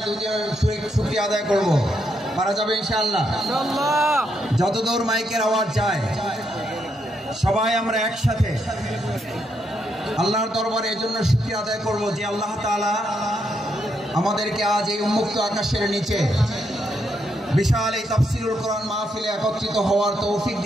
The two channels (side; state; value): both; normal; correlation 0.78